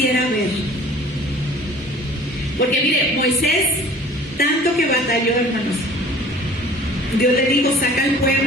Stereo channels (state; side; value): normal; both; correlation 0.47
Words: ver. Porque mire, Moisés, tanto que batalló, hermanos. Dios le dijo, saca al